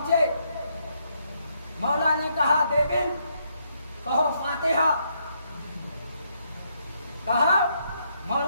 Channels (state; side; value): inverted; both; correlation -0.74